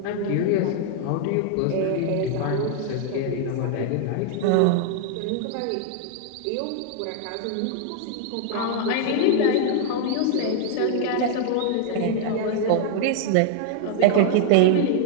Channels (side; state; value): both; different; correlation 0.00